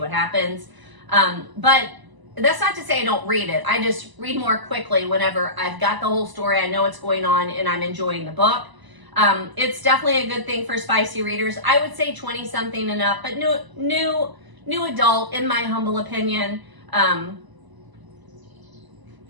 happens. But that's not to say I don't read it. I just read more quickly whenever I've got the whole story, I know what's going on, and I'm enjoying the book. It's definitely a good thing for spicy readers. I would say 20-something and up, but new adult, in my humble opinion.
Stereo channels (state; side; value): late; left; 1.0 ms